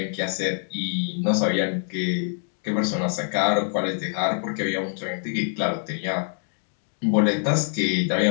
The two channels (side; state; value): right; silent; 56 dB below the other